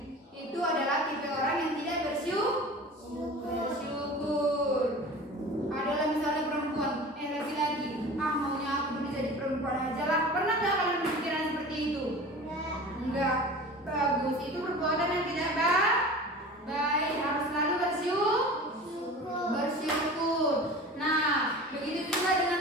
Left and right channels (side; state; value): both; normal; correlation 0.37